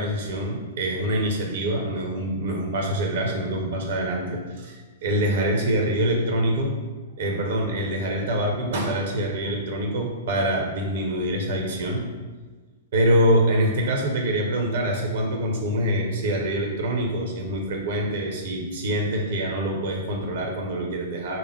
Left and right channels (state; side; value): inverted; both; correlation -0.34